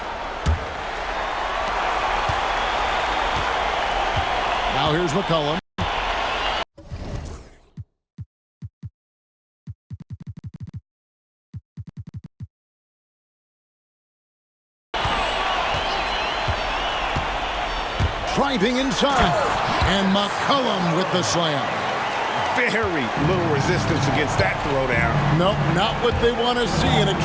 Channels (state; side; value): identical; both; correlation 1.00